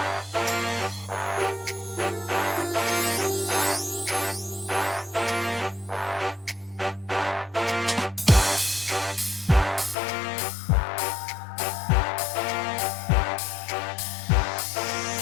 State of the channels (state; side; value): drops out; right; at 10.0 s